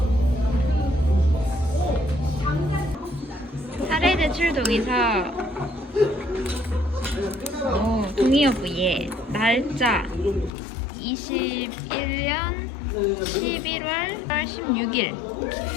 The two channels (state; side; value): drops out; right; at 10.5 s